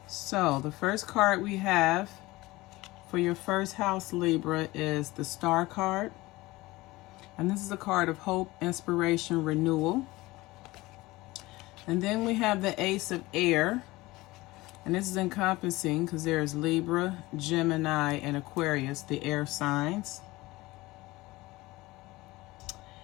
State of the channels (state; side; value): quieter; right; 20.0 dB